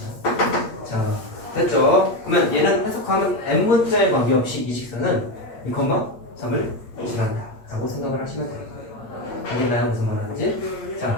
자 됐죠? 그러면 얘는 해석하면 n문자에 관계없이 이 직선은 2,3을 지난다 라고 생각을 하시면 돼요. 알겠나요? 무슨 말 하는지?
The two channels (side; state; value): right; late; 8.7 ms